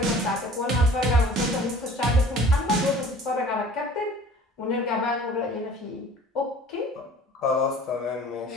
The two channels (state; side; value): normal; both; correlation 0.47